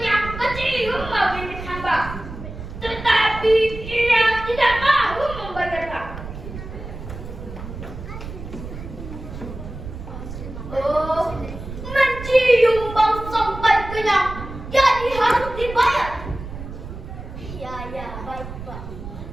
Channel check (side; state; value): right; noise; rumble, 11 dB below the sound